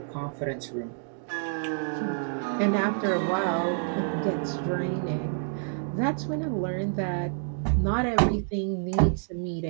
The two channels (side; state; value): left; silent; digital silence